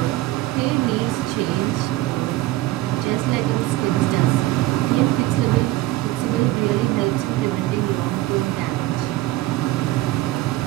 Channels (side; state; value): left; quieter; 17.1 dB